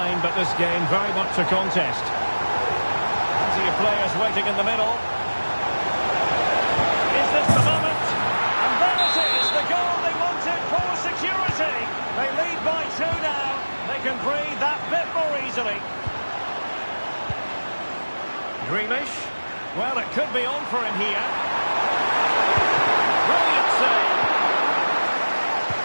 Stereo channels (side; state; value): both; inverted; correlation -1.00